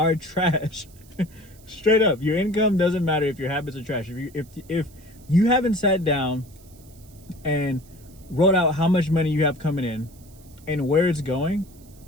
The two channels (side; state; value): right; noise; hiss, 26 dB below the sound